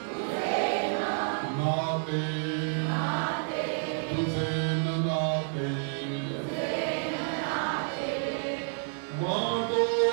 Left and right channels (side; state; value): left; silent; 58 dB below the other